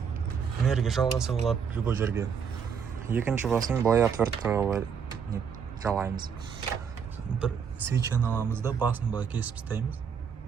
энергия жалғаса болады любой жерге. Екінші басын былай отверткаға жалаймыз. Бір свечаны аламыз да басын былай кесіп тастаймыз.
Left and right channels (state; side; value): quieter; left; 6.8 dB